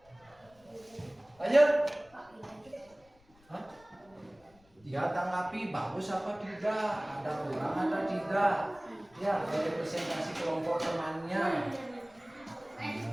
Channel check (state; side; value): noise; left; rumble, 30 dB below the sound